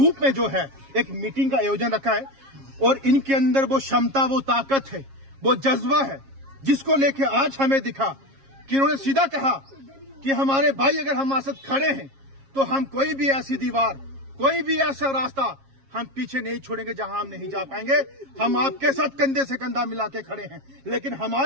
में जो है एक मीटिंग का आयोजन रखा है। और इनके अंदर वो क्षमता, वो ताकत है, वो जज्बा है, जिसको लेके आज हमें दिखा कि इन्होंने सीधा कहा कि हमारे भाई अगर हमारे साथ खड़े हैं तो हम कोई भी ऐसी दीवार, कोई भी ऐसा रास्ता हम पीछे नहीं छोड़ेंगे जहां हम नहीं जा पाएंगे। हम आपके साथ कंधे से कंधा मिला के खड़े हैं, लेकिन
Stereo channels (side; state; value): left; late; 7.4 ms